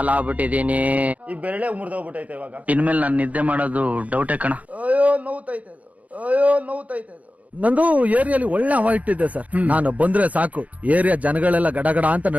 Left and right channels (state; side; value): late; left; 0.070 ms